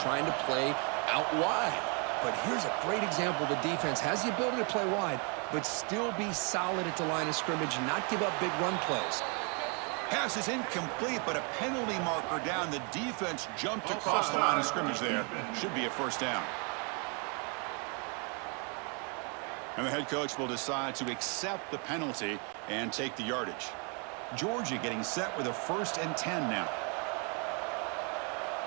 to play out wide. But here's a great example. The defense has the ability to play wide, but still be solid at the line of scrimmage and not give up big run plays. Pass is incomplete, but a penalty marker down. The defense jumped across the line of scrimmage there. Should be a 1st down. And the head coach will decide to accept the penalty and take the yardage. Georgia getting set with a 1st and 10 now.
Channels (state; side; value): quieter; left; 35.4 dB